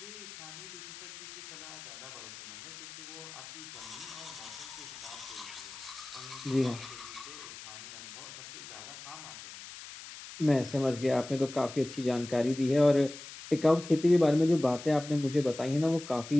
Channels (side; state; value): left; noise; hiss, 13 dB below the sound